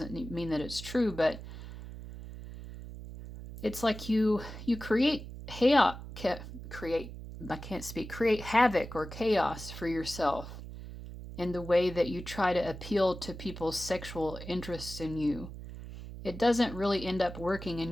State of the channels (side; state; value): right; noise; hum, 11 dB below the sound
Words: mean that it's true, but it's like you create create havoc or chaos for yourself in the way that you try to appeal to people's sexual interests in you. It doesn't really end up working in